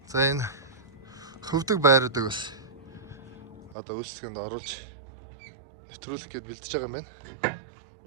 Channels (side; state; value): left; drops out; at 3.8 s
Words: За энэ хөвдөг байруудыг бас одоо үйлчлэгэнд оруулж нэвтрүүлэх гээд бэлдэж байгаа юм байна.